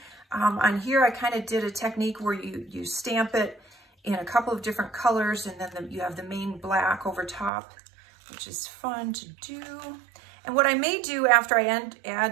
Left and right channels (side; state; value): left; drops out; at 7.5 s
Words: On here, I kind of did a technique where you stamp it in a couple of different colors, and then you have the main black over top, which is fun to do. And what I may do after I